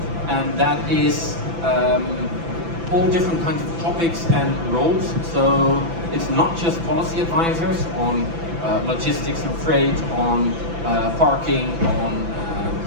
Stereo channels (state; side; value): late; left; 6.0 ms